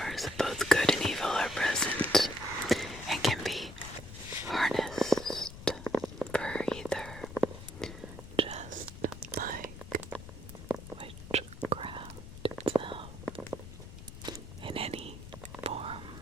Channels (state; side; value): noise; left; rumble, 13 dB below the sound